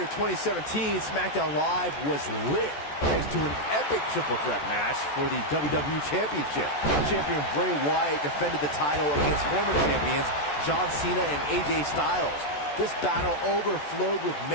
2017, SmackDown Live was lit thanks to an epic triple threat match for the WWE Championship. Champion Bray Wyatt defended the title against former champions John Cena and AJ Styles. This battle overflowed with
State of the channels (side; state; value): right; late; 14 ms